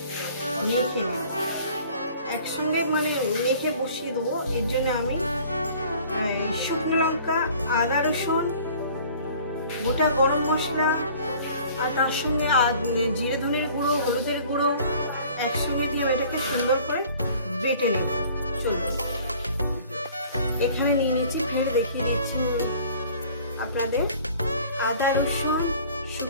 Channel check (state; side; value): inverted; both; correlation -0.50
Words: মেখে নেব, একসঙ্গে মানে মেখে বসিয়ে দেবো। এর জন্য আমি শুকনো লঙ্কা, আদা রসুন, গোটা গরম মশলা আর তার সঙ্গে জিরে ধনের গুঁড়ো, হলুদের গুঁড়ো একসঙ্গে দিয়ে এটাকে সুন্দর করে বেটে নেব। চলবে, এখানে নিয়ে নিচ্ছি, ফের দেখিয়ে দিচ্ছি আপনাদের। আদা রসুন,